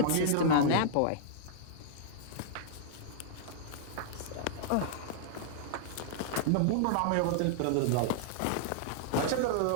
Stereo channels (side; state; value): both; different; correlation -0.01